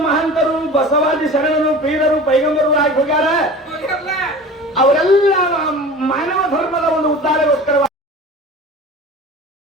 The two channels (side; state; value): both; normal; correlation 0.37